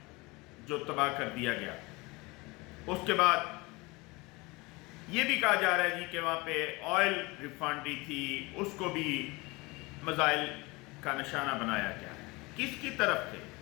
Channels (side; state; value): right; quieter; 24.3 dB